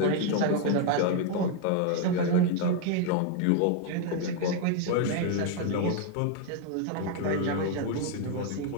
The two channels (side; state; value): both; different; correlation 0.00